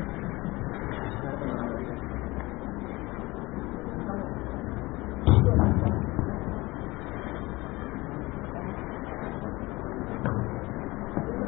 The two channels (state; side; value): quieter; right; 21.6 dB